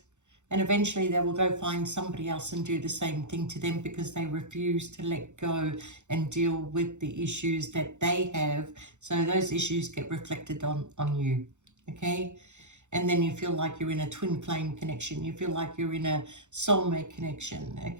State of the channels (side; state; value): left; late; 0.84 ms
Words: and eventually they will go find somebody else and do the same thing to them, because they refuse to let go and deal with the issues that they have. So those issues get reflected on you, okay? And then you feel like you're in a twin flame connection. You feel like you're in a soulmate connection,